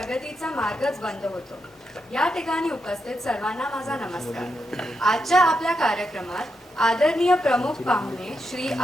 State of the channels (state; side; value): normal; both; correlation 0.84